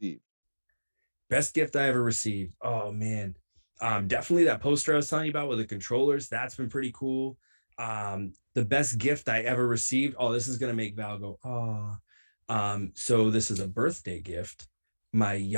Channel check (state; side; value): inverted; both; correlation -1.00